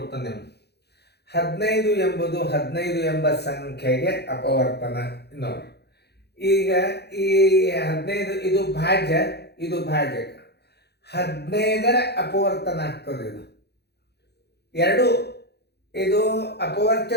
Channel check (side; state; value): right; late; 0.48 ms